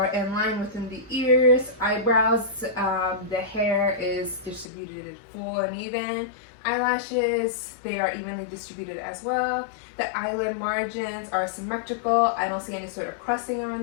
in line within the ears, eyebrows, the hair is distributed full and even. Eyelashes, they are evenly distributed as well. The eyelid margins are symmetrical. I don't see any sort of crusting around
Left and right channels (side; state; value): right; drops out; at 4.7 s